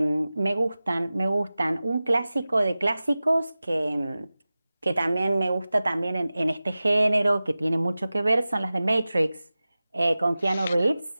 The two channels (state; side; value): inverted; both; correlation -0.96